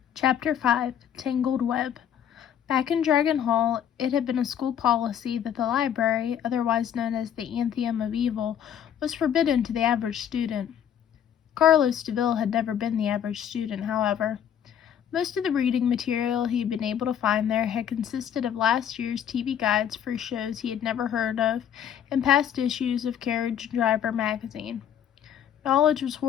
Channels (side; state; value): right; quieter; 9.3 dB